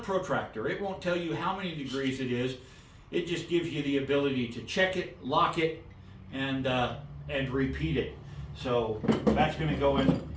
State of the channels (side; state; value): both; identical; correlation 1.00